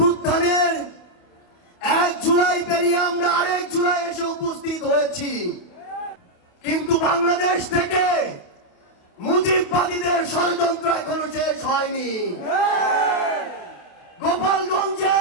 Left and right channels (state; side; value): late; right; 28 ms